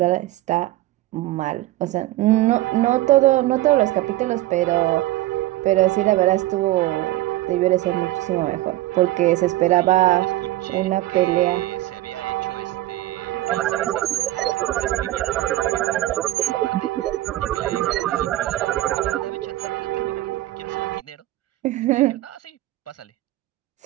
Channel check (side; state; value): left; quieter; 16.2 dB